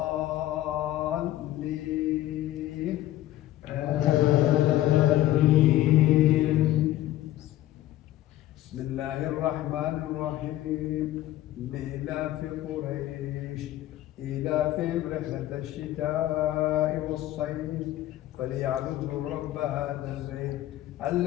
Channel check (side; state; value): right; quieter; 14.4 dB